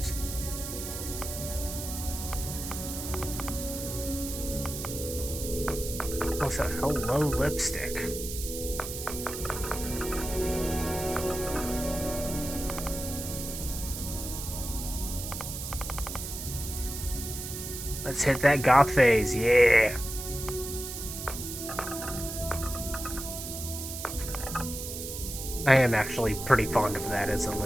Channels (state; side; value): noise; right; hiss, 7 dB below the sound